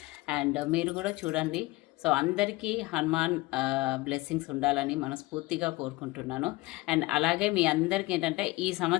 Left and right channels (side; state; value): right; quieter; 20.7 dB